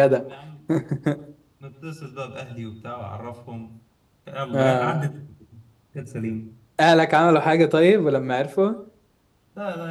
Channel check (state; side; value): identical; both; correlation 1.00